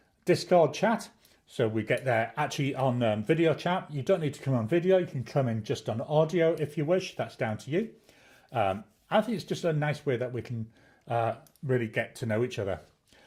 Discord chat. So we get there actually on video chat. You don't need to come on video. You can come in just on audio if you wish. That's down to you. I think it's just a nice way that we can really get to know each other.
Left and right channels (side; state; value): both; identical; correlation 1.00